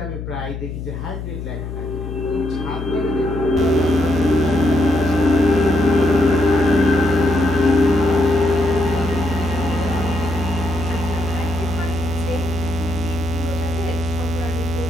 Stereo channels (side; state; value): left; noise; hum, 7 dB below the sound